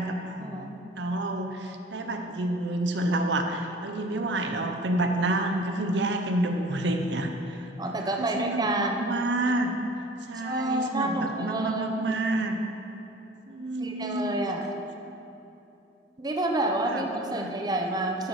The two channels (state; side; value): normal; both; correlation 0.44